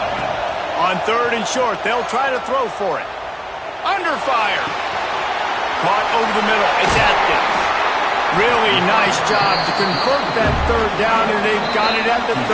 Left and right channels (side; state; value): both; identical; correlation 1.00